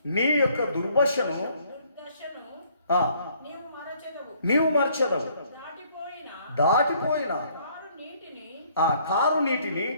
నీ యొక్క దుర్దశను నీవు మరచెదవు. దాటిపోయిన ఆ కారు నీటిని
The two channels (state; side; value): inverted; both; correlation -0.63